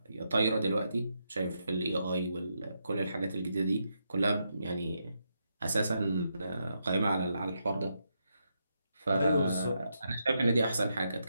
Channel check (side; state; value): both; inverted; correlation -0.82